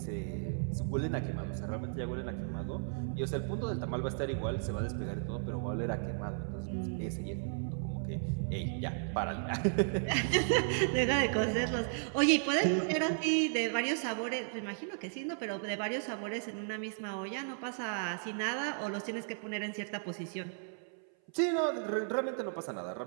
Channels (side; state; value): left; silent; 55 dB below the other